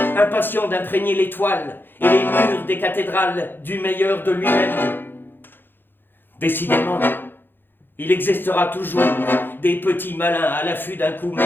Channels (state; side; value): late; right; 0.098 ms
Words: d'imprégner l'étoile et les murs des cathédrales du meilleur de lui-même. Décidément, il existera toujours des petits malins à l'affût d'un coup